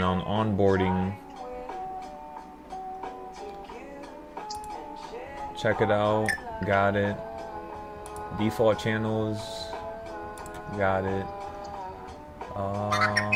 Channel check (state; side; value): identical; both; correlation 1.00